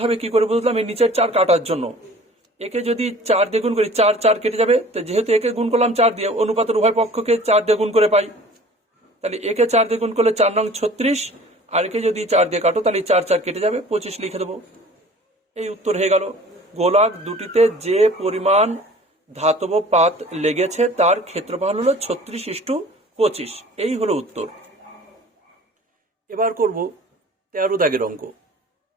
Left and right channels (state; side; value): normal; both; correlation 0.46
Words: হবে, কি করে বুঝলাম? এই নিচের 4 কাটার জন্য। একে যদি 4 দিয়ে গুণ করি, 4 4 কেটে যাবে। তো যেহেতু একে গুণ করলাম 4 দিয়ে, অনুপাতের উভয় পক্ষকে 4 দিয়ে গুণ করে পাই। তাহলে একে 4 দিয়ে গুণ করলে 4 নং 36, আর একে যদি 4 দিয়ে কাটো, তাহলে 4 4 কেটে যাবে, 25 লিখে দেবো। এই উত্তর হয়ে গেল। গোলক দুটিতে যে পরিমাণ ধাতব পাত লেগেছে তার ক্ষেত্রফল হলো 36:25। এই হলো উত্তর। এবার করব 13 দাগের অঙ্ক।